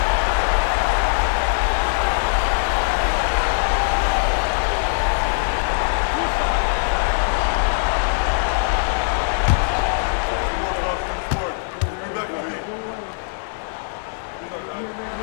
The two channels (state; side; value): silent; right; digital silence